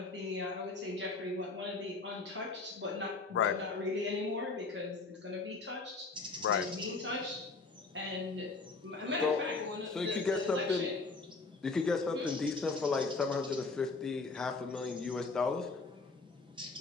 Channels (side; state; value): right; quieter; 4.0 dB